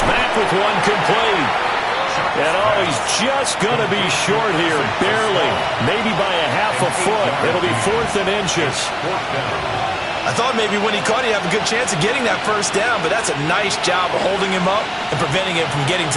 back with one complete. And he's just going to be short here, barely. Maybe by a half a foot. It'll be 4th and inches. I thought maybe when he caught it, he'd have a good chance of getting that 1st down, but that's a nice job of holding him up and preventing him from getting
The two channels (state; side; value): identical; both; correlation 1.00